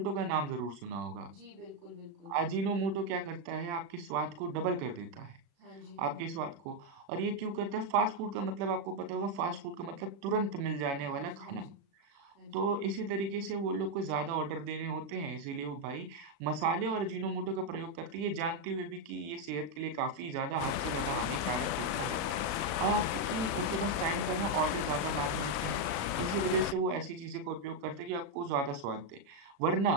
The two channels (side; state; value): left; late; 36 ms